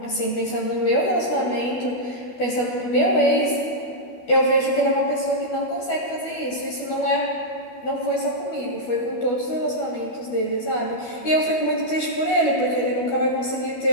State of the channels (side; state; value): right; late; 12 ms